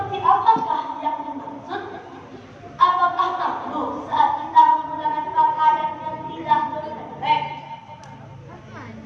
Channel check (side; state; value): both; identical; correlation 1.00